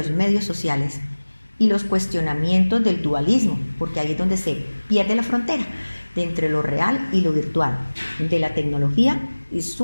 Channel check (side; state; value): both; inverted; correlation -1.00